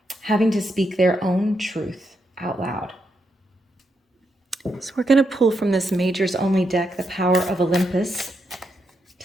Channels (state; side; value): normal; both; correlation 0.82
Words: having to speak their own truth out loud. So we're going to pull from this Majors Only deck, the Power of Olympus,